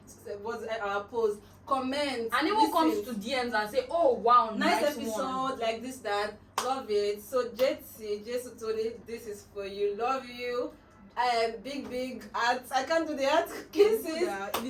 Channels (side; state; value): both; identical; correlation 1.00